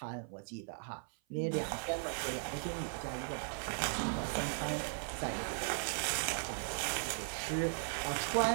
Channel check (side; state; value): left; silent; 53 dB below the other